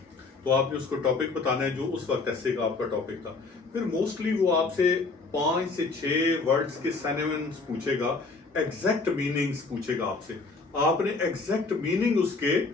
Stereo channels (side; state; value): right; quieter; 4.0 dB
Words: तो आपने उसको टॉपिक बताना है जो उस वक्त एसे का आपका टॉपिक था। फिर मोस्टली वो आपसे 5 से 6 वर्ड्स के सिनोनिम्स पूछेगा, एग्जैक्ट मीनिंग्स पूछेगा आपसे, आपने एग्जैक्ट मीनिंग उसके